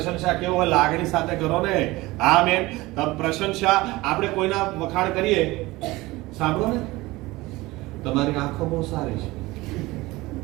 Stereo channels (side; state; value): left; quieter; 20.3 dB